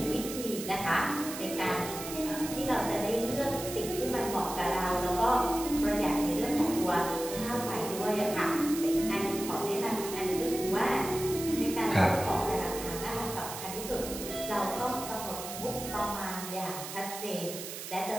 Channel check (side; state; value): right; noise; hiss, 9 dB below the sound